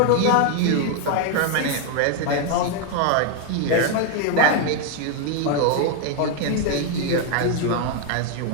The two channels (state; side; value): different; both; correlation 0.01